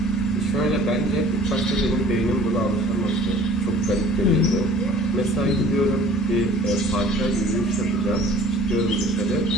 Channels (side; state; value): both; normal; correlation 0.49